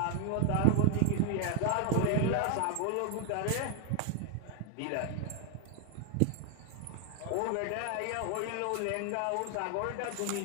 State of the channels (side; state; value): both; different; correlation 0.00